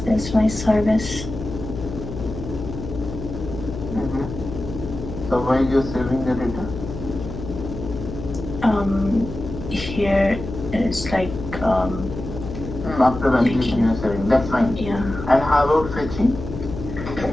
is my service. So while you're saving the data? Here it's like After validation you're saving, that's fine. yeah, And how about fetching?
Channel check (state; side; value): noise; left; hum, 8 dB below the sound